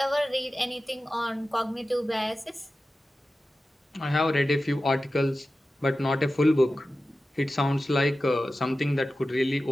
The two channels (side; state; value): both; normal; correlation 0.94